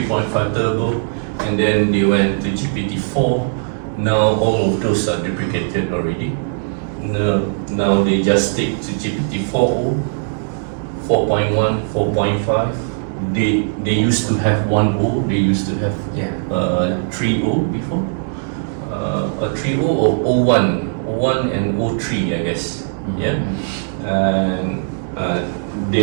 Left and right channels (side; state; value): left; silent; digital silence